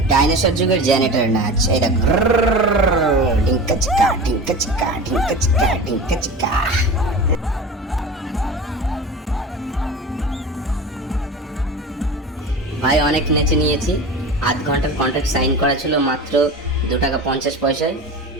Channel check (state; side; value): normal; both; correlation 0.32